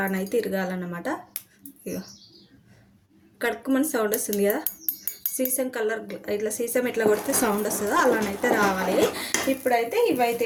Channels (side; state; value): both; identical; correlation 1.00